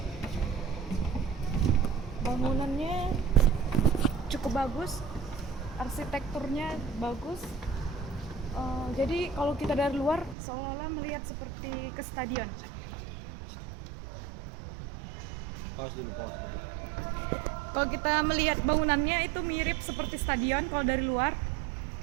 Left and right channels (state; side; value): drops out; left; at 10.4 s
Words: Bangunannya cukup bagus, arsitekturnya bagus. Jadi kalau kita dari luar seolah-olah melihat seperti ke stadion. Pause dulu. Kalau kita melihat bangunannya itu mirip seperti stadion kalau dari luar.